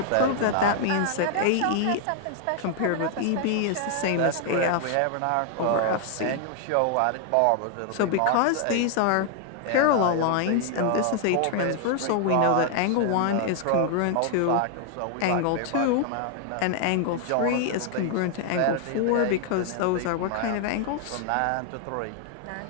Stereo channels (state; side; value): different; both; correlation 0.00